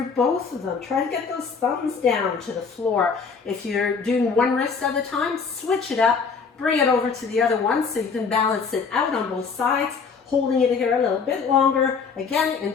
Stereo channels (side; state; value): right; quieter; 5.4 dB